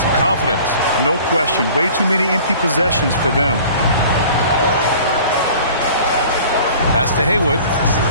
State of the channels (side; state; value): both; inverted; correlation -0.46